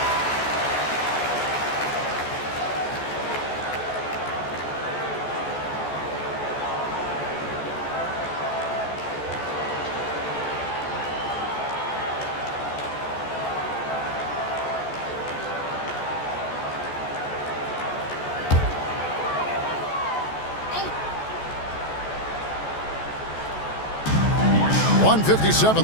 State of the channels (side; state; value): right; late; 14 ms